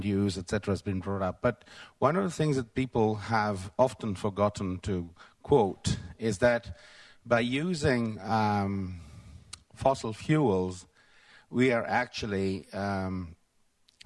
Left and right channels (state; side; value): identical; both; correlation 1.00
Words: use, etc., has been brought up. But one of the things that people have often forgotten to quote is that by using fossil fuels, we are actually